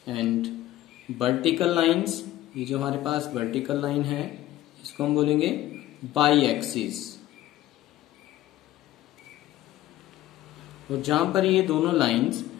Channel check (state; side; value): quieter; right; 14.8 dB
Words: and vertical lines, ये जो हमारे पास वर्टिकल लाइन है इसको हम बोलेंगे बाई एक्सिस। और जहां पर ये दोनों लाइंस